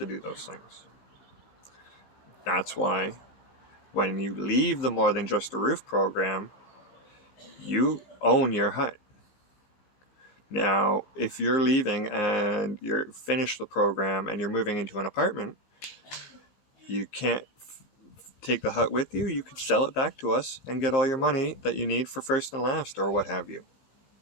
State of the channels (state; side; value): late; right; 19 ms